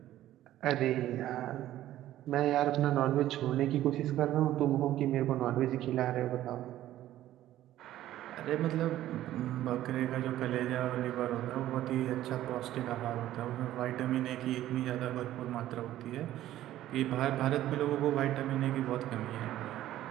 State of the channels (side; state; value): left; quieter; 13.6 dB